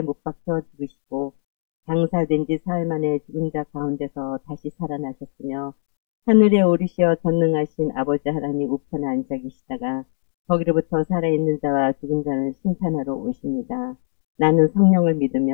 못 박혀 죽으시고 장사된 지 사흘 만에 죽은 자 가운데서 다시 살아나셨으며 하늘에 오르시어 전능하신 아버지 하나님 우편에 앉아 계시다가 거기로부터 살아있는 자와 죽은 자를 심판하러 오십니다. 나는 성령을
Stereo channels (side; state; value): right; silent; digital silence